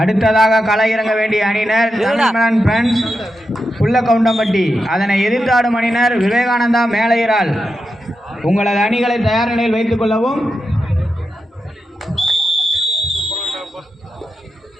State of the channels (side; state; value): both; normal; correlation 0.88